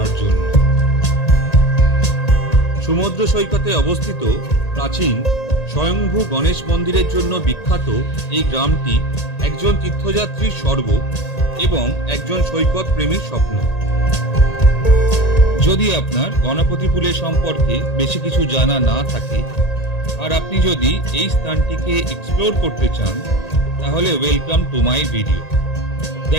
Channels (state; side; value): late; right; 1.9 ms